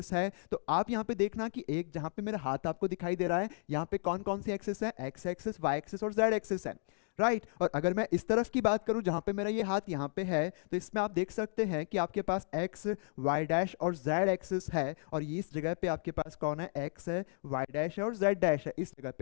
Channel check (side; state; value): right; silent; 55 dB below the other